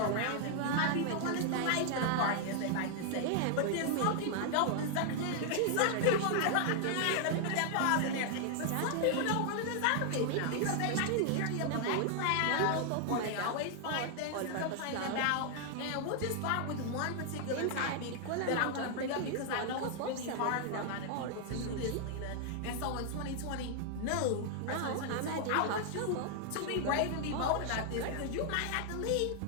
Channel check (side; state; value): both; different; correlation 0.00